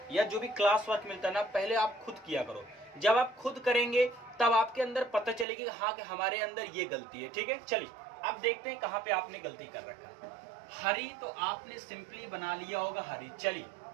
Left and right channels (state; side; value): drops out; left; at 5.5 s